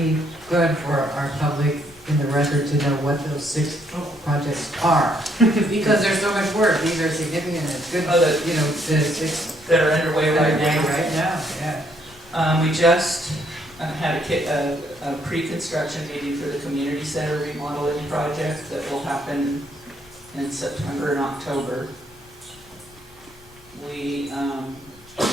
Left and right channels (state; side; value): noise; left; rumble, 26 dB below the sound